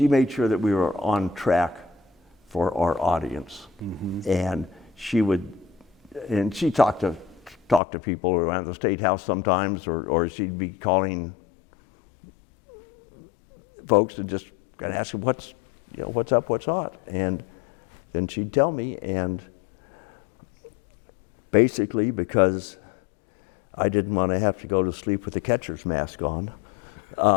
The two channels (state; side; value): drops out; right; at 7.8 s